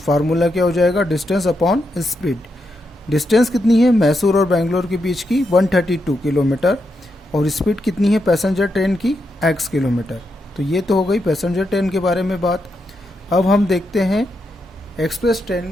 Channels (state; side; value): normal; both; correlation 0.83